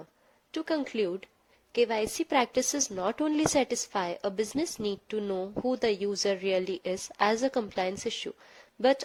to conclude, KYC practices not only satisfy a business need to know who the user really is as a compliance issue, but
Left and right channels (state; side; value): identical; both; correlation 1.00